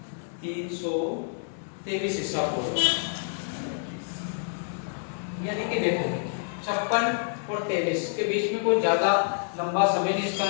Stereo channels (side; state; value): right; silent; digital silence